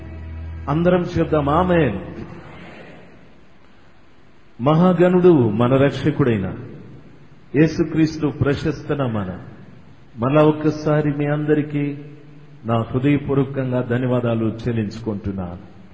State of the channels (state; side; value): identical; both; correlation 1.00